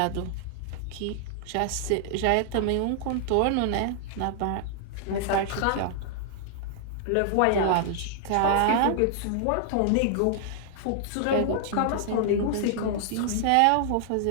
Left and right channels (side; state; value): both; different; correlation -0.01